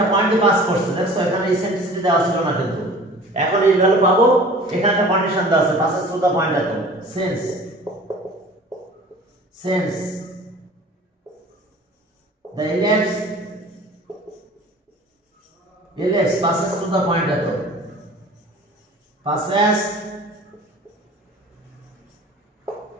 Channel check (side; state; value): both; normal; correlation 0.45